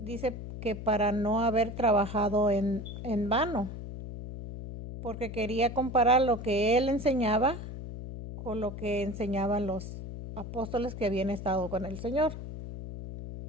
que para no haber trabajado en vano, porque quería comparar lo que él enseñaba con lo que enseñaban los apóstoles que habían estado con el Señor.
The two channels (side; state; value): left; noise; hum, 9 dB below the sound